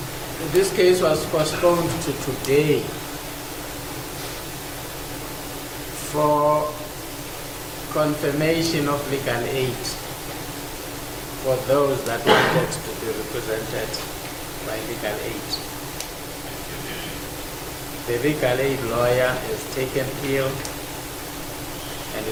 This case was postponed to today for confirmation of legal aid for those that wanted to be represented by legal aid. The legal aid lawyer is taken ill and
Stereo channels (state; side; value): identical; both; correlation 1.00